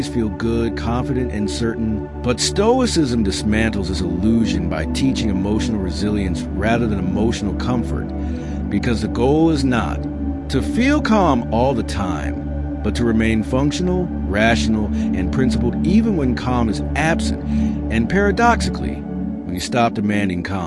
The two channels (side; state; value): both; identical; correlation 1.00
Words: feel good, confident, and certain. But Stoicism dismantles this illusion by teaching emotional resilience rather than emotional comfort. Because the goal is not to feel calm all the time, but to remain functional, rational, and principled even when calm is absent. And paradoxically, when you stop demanding